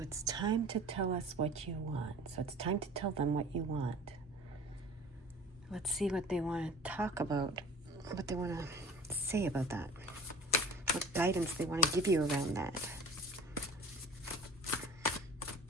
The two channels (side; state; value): both; normal; correlation 0.43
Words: it's time to tell us what you want. So it's time to tell them what you want. Let's see what they want to talk about, what they want to say about that, what guidance they want to give you around that.